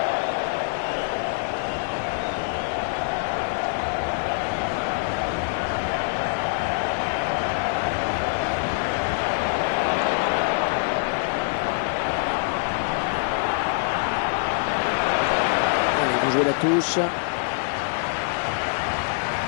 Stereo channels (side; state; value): right; silent; digital silence